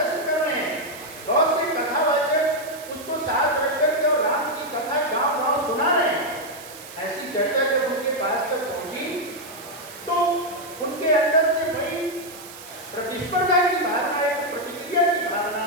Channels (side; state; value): right; noise; hiss, 16 dB below the sound